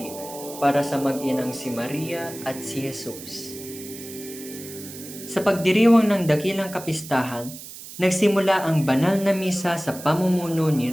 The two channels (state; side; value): noise; right; hiss, 14 dB below the sound